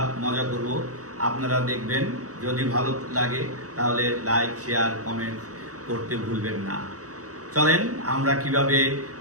মজা করব। আপনারা দেখবেন, যদি ভালো লাগে তাহলে লাইক, শেয়ার, কমেন্ট করতে ভুলবেন না। চলেন আমরা কিভাবে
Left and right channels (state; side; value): late; left; 0.66 ms